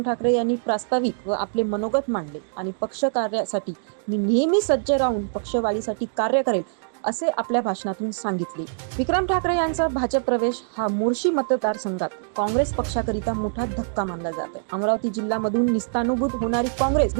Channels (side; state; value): left; silent; digital silence